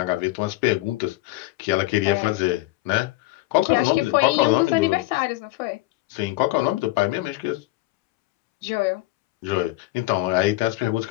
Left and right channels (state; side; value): quieter; right; 19.1 dB